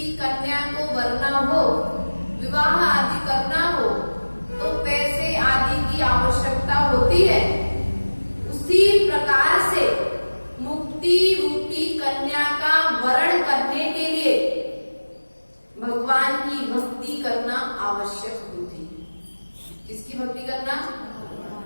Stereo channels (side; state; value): both; inverted; correlation -1.00